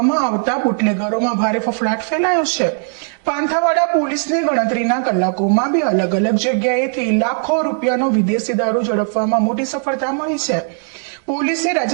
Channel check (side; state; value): left; silent; 55 dB below the other